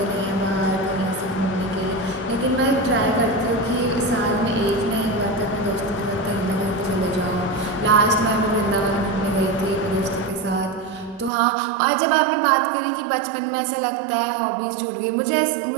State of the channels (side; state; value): left; drops out; at 11.3 s